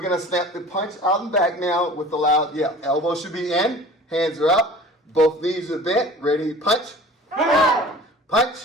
going to snap the punch out and back now with a loud yell. Elbow should be in. Hands are up. Both knees are bent. Ready? Punch.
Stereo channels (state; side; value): normal; both; correlation 0.43